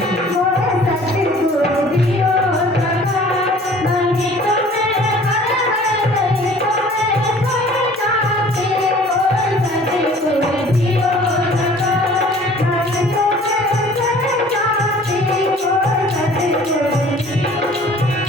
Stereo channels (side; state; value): both; normal; correlation 0.50